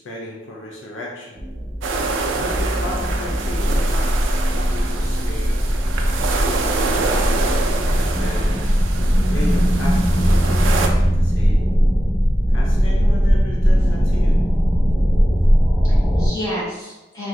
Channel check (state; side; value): normal; both; correlation 0.89